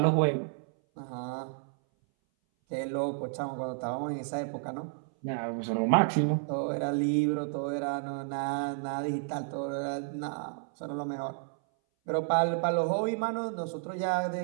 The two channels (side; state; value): left; silent; 57 dB below the other